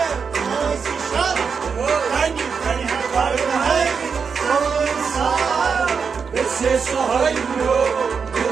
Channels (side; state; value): left; quieter; 5.9 dB